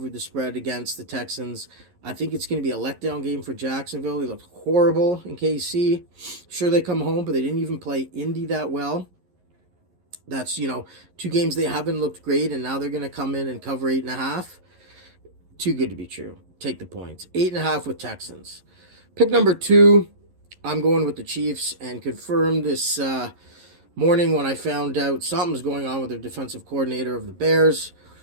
the spread against the Texans, I think it's going to be a letdown game for Jacksonville. They looked horrible in KC. Sure, they come home, but they didn't even play Indy that well. That's, 2 games they haven't looked great, and now they're going to come in and cover 8.5. Too good to be true. Take the points. 8.5 with Texans. Pick number 2, I'm going with the Chiefs, and confirmed this morning when I found out something's going on with their defensive coordinator of the Bears.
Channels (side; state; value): left; late; 11 ms